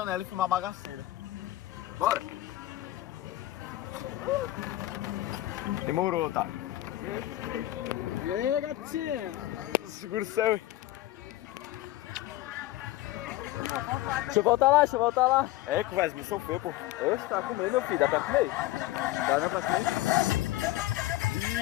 e filmar bagaceira. Bora. Demorou, tá? E aí, gatinha? Segura o céu. Deixa eu voltar lá. É, conversa, me sofreu, pô. Oxe, tá comendo, meu filho. Dá pra comer? Dá não pra comer?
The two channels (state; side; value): quieter; right; 15.9 dB